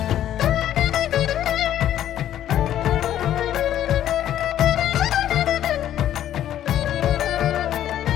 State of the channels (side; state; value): right; quieter; 11.5 dB